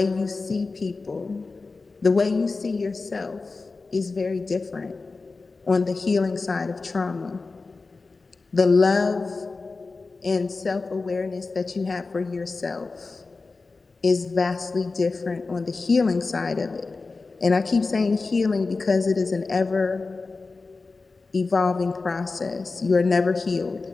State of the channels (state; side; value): quieter; right; 3.9 dB